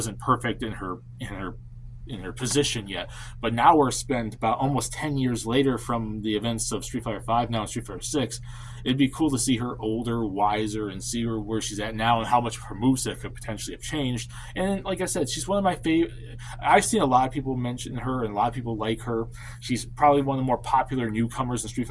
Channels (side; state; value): both; identical; correlation 1.00